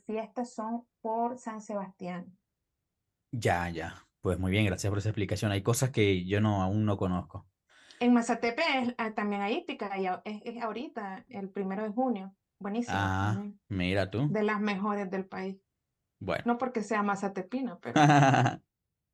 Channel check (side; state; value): both; identical; correlation 1.00